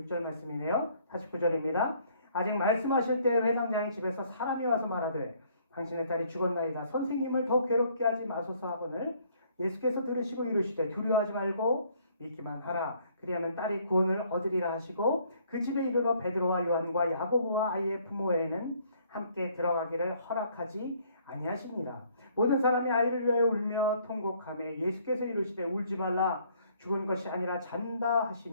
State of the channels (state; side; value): inverted; both; correlation -0.62